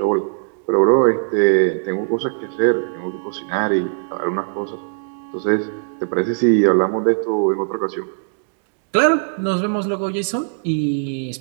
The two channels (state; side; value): silent; left; digital silence